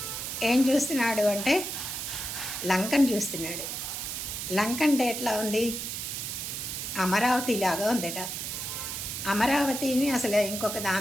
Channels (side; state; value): right; noise; hiss, 5 dB below the sound